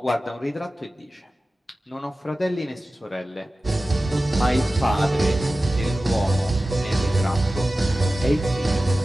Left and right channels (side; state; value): both; normal; correlation 0.95